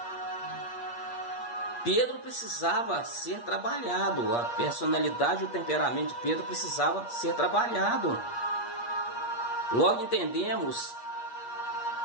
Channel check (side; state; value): right; late; 8.4 ms